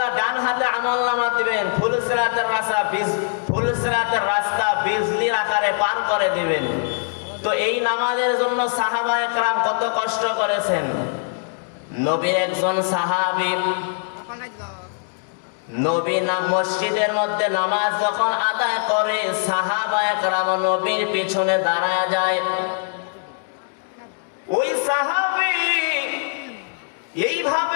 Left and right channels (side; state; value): right; silent; 62 dB below the other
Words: ডান হাতে আমলনামা দিবেন, ফুলসিরাতের রাস্তা বিজলির আকারে পার করে দিবেন। তো এই নামাজের জন্য সাহাবায়ে কেরাম কত কষ্ট করেছেন। নবীর একজন সাহাবী, নবী মসজিদের মধ্যে নামাজ যখন আদায় করে, সাহাবায়ে কেরাম নবীর পিছনে দাঁড়ায় যায়। ওই সাহাবী